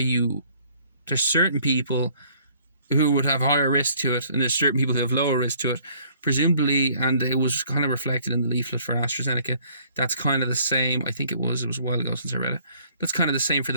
there's certain people who would have higher risk to it, and there's certain people who have lower risk to it, presumably, and it was kind of reflected in the leaflet for AstraZeneca. That's kind of the same. I think it was a while ago since I read it. That's kind of the same for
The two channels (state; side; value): inverted; both; correlation -0.60